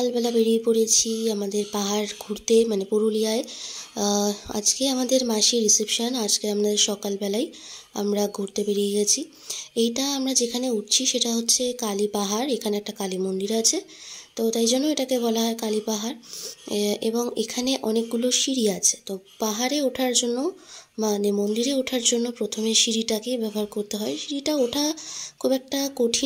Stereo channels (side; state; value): both; identical; correlation 1.00